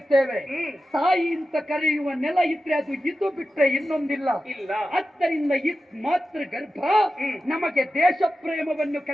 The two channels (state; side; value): normal; both; correlation 0.92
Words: ತಾಯಿ ಅಂತ ಕರೆಯುವ ನೆಲ ಇದ್ರೆ ಅದು ಇದು ಬಿಟ್ರೆ ಇನ್ನೊಂದಿಲ್ಲ. ಆದ್ದರಿಂದ ಮಾತೃ ಗರ್ಭ ನಮಗೆ ದೇಶ ಪ್ರೇಮವನ್ನು